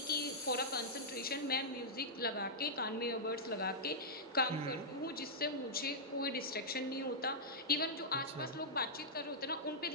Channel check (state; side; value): normal; both; correlation -0.12